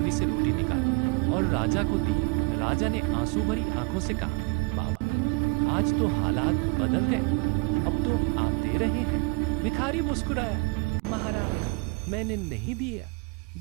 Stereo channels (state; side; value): quieter; left; 30.2 dB